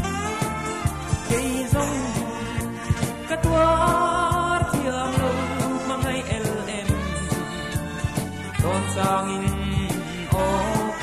ke zong ka tuar thiam lo mangai el em kon sang in o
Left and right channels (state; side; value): identical; both; correlation 1.00